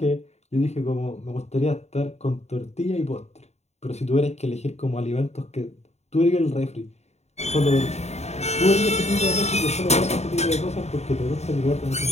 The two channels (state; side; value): late; right; 0.32 ms